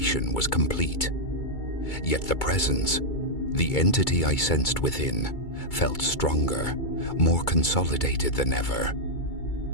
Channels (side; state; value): right; late; 2.3 ms